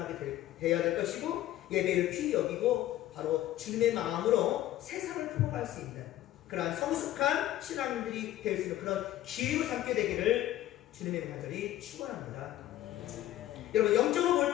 돼야 될 것이고, 예배를 귀히 여기고 바로 주님의 마음으로 세상을 품어갈 수 있는 그러한 성숙한 신앙인들이 될 수 있는 그런 기회로 삼게 되기를 주님의 간절히 축원합니다. 여러분, 영적으로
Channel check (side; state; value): right; quieter; 13.8 dB